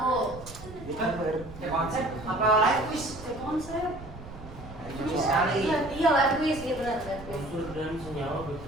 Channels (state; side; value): noise; right; rumble, 14 dB below the sound